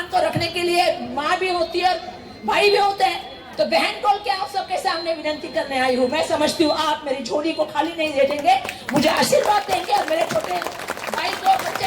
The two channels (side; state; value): both; identical; correlation 1.00